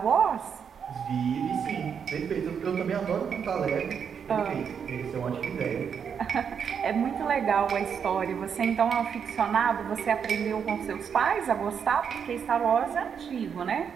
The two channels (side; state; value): left; quieter; 7.2 dB